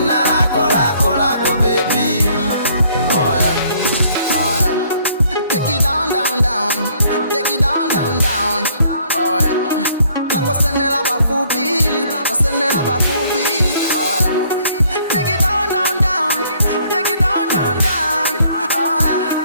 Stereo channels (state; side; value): inverted; both; correlation -0.63